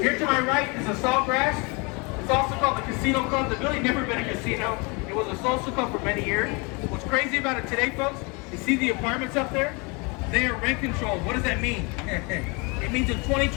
to my right is a Saltgrass. It's also called the Casino Club. The building never been a casino. It was a social club for many years. What's crazy about it today, folks? You see the apartments up there? They are rent controlled. What does that mean? It means in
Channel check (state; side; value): quieter; right; 29.7 dB